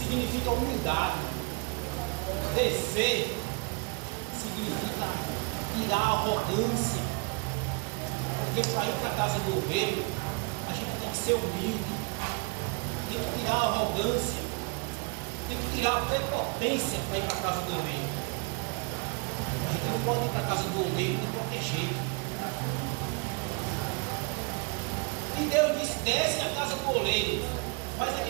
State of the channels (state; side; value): quieter; left; 32.6 dB